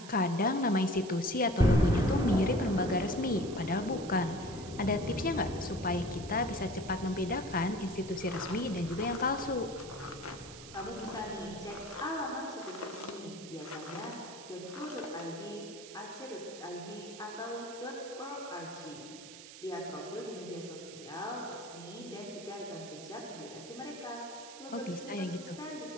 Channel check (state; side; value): noise; right; hiss, 15 dB below the sound